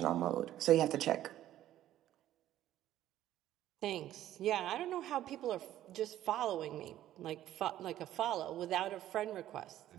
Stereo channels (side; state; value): left; quieter; 12.9 dB